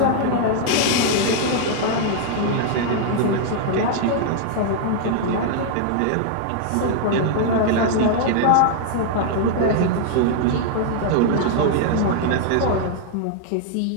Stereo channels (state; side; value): different; both; correlation -0.01